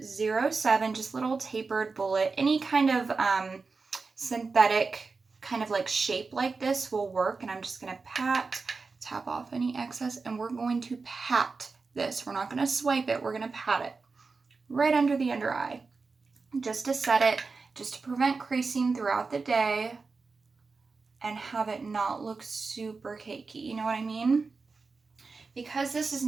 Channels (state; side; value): quieter; left; 4.3 dB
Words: just little tapered bullet. Any kind of synthetic kind of like shape like this will work. And I'm just going to tap off any excess, and we're going to pat this. We're not going to swipe it. We're going to pat it right under the under eye, just to set it, just to prevent creasing throughout the day and have it not look super cakey. You know what I mean? Because this is